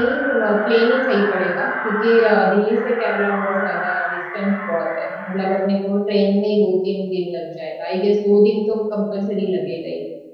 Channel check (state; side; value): identical; both; correlation 1.00